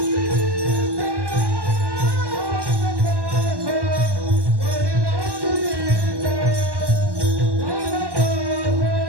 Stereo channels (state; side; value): late; left; 1.1 ms